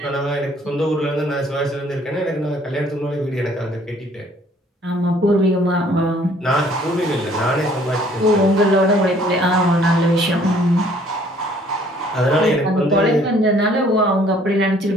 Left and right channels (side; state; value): both; normal; correlation 0.59